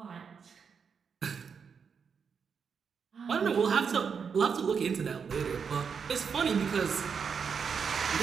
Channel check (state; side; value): quieter; left; 6.3 dB